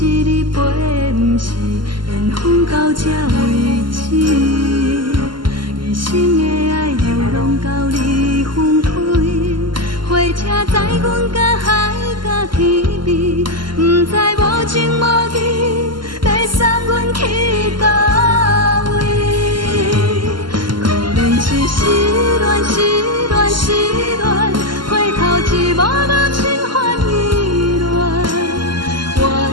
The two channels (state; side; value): late; left; 0.72 ms